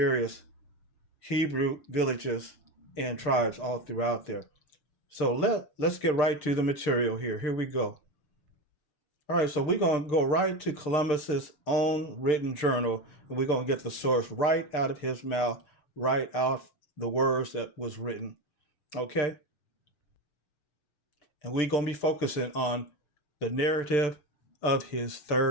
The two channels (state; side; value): late; right; 6.7 ms